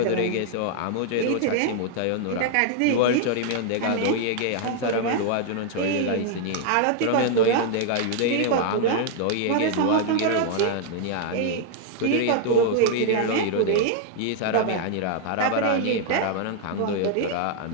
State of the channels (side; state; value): both; different; correlation 0.00